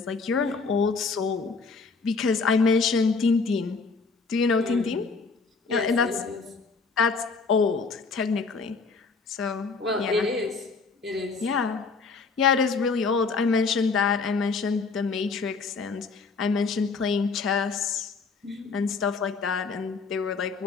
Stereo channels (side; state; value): right; quieter; 4.6 dB